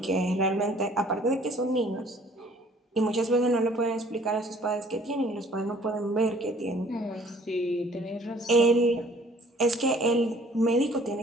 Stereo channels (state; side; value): normal; both; correlation 0.56